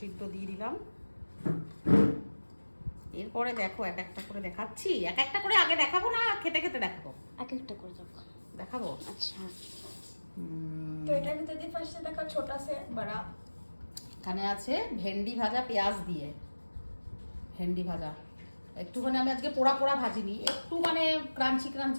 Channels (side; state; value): both; inverted; correlation -1.00